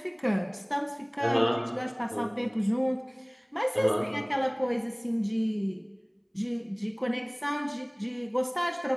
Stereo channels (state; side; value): identical; both; correlation 1.00